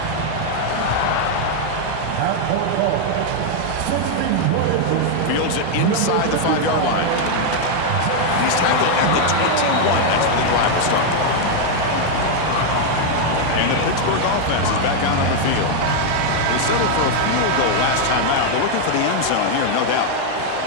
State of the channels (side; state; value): both; different; correlation 0.00